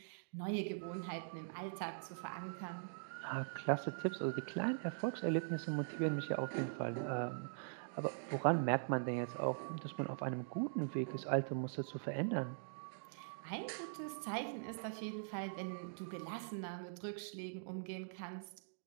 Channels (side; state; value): left; silent; digital silence